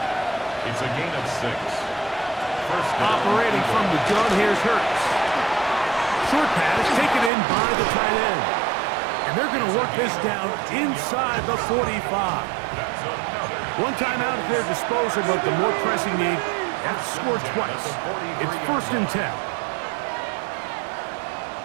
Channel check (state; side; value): drops out; left; at 7.3 s